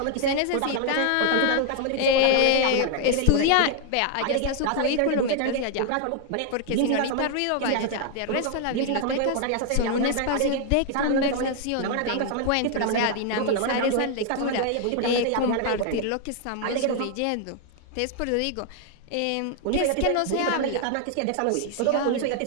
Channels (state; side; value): different; both; correlation 0.00